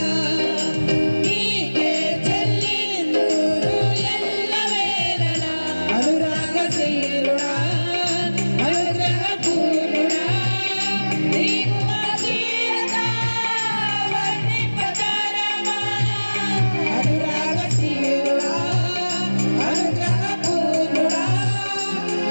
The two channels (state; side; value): inverted; both; correlation -1.00